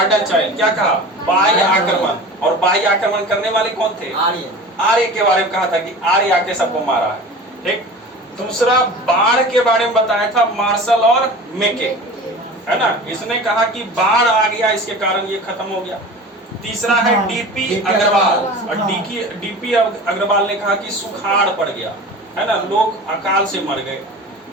चाइल्ड। क्या कहा? बाह्य आक्रमण। और बाह्य आक्रमण करने वाले कौन थे? आर्य के बारे में कहा था कि आर्य आके सबको मारा है, ठीक। दूसरा बाढ़ के बारे में बताया था, मार्शल और मेके, है ना। इसने कहा कि बाढ़ आ गया, इसके कारण ये खत्म हो गया। तीसरा है डीपी अग्रवाल, और डीपी अग्रवाल ने कहा कि सुखाड़ पड़ गया, है ना, लोग अकाल से मर गए।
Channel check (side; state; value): both; normal; correlation 0.36